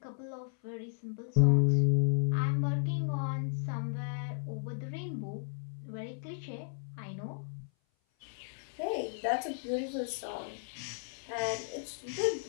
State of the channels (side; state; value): right; silent; 55 dB below the other